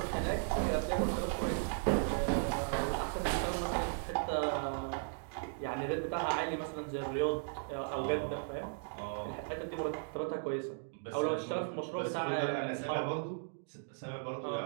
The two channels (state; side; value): silent; left; digital silence